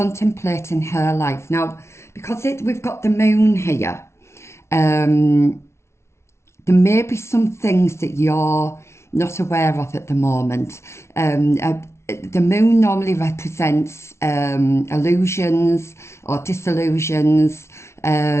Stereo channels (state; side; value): late; right; 0.13 ms